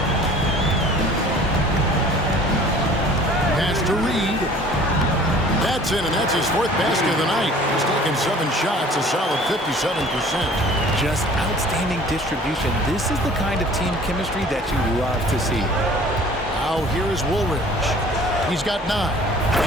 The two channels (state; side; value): normal; both; correlation 0.49